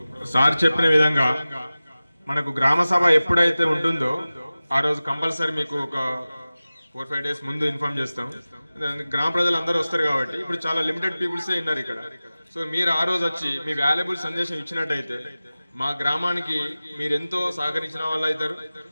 సార్ చెప్పిన విధంగా మనకు గ్రామ సభ ఎప్పుడైతే ఉంటుందో ఆ రోజు కంపల్సరీ మీకు ఒక 4-5 days ముందు ఇన్ఫార్మ్ చేస్తాం. గ్రామ ప్రజలు అందరూ వస్తారు కాబట్టి ఇప్పుడు చాలా లిమిటెడ్ పీపుల్సే ఉన్నారు ఇక్కడ. సో మీరు ఆ రోజు వచ్చి మీ వాల్యుబుల్ సందేశం ఇచ్చినట్టయితే మా గ్రామానికి మీరు ఎంతో సహకరించిన వాళ్ళు అవుతారు.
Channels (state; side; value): inverted; both; correlation -0.97